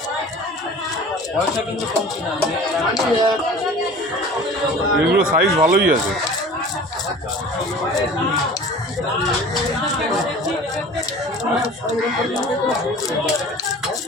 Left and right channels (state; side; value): normal; both; correlation 0.42